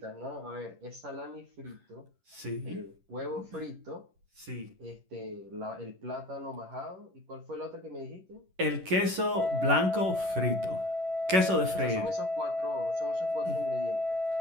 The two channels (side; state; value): left; late; 11 ms